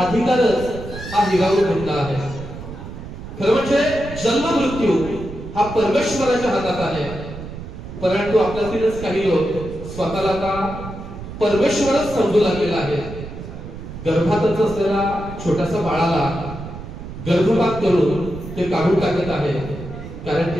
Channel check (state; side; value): noise; right; rumble, 11 dB below the sound